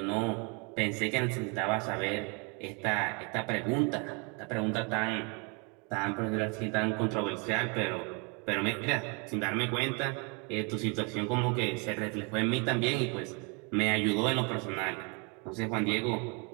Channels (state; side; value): quieter; left; 32.2 dB